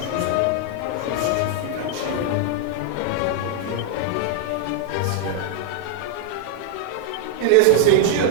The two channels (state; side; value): different; both; correlation 0.00